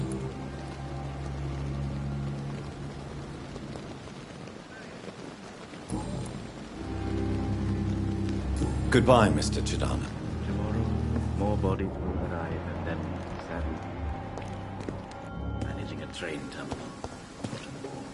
Goodbye, Mr. Chidana. Tomorrow, more bodies will arrive, and then, sadly, managing a train terminal.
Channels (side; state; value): both; identical; correlation 1.00